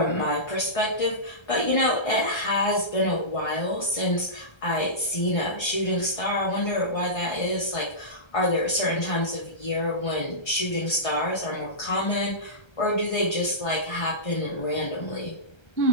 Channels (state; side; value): late; right; 1.3 ms